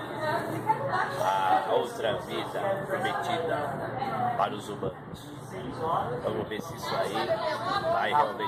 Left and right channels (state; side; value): identical; both; correlation 1.00